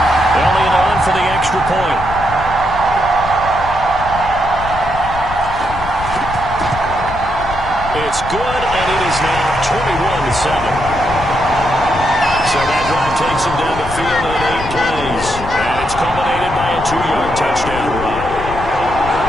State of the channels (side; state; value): left; noise; rumble, 10 dB below the sound